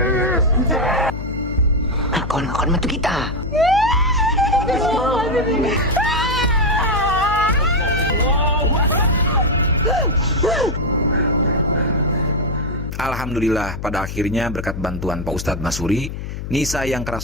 Akon metu kita. Alhamdulillah, pada akhirnya berkat bantuan Pak Ustadz Masuri, Nisa yang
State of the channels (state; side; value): noise; left; hum, 7 dB below the sound